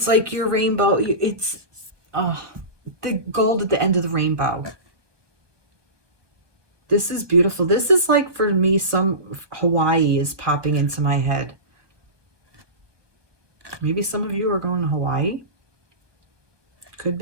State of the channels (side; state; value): left; late; 1.2 ms